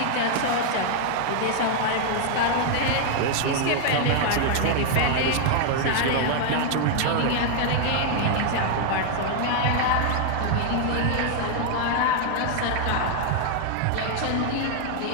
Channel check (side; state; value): both; different; correlation 0.00